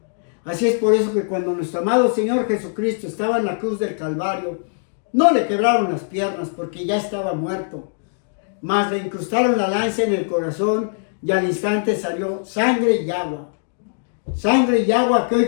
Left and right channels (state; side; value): silent; right; digital silence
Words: Así es por eso que cuando nuestro amado Señor Jesucristo estaba en la cruz del Calvario, no le quebraron las piernas porque ya estaba muerto, mas le incrustaron la lanza en el corazón y al instante salió sangre y agua. Sangre y agua que hoy